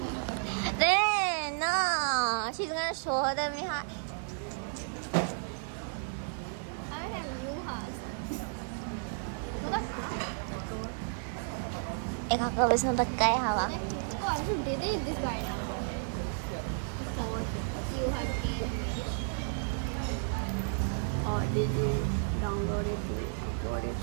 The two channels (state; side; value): silent; left; digital silence